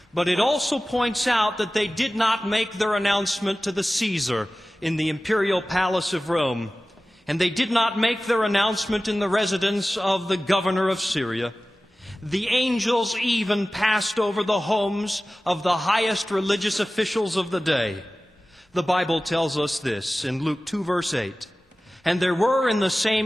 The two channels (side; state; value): both; normal; correlation 0.97